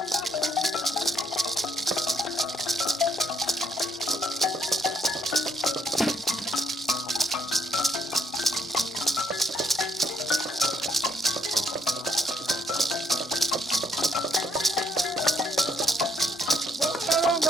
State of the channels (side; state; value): both; normal; correlation 0.71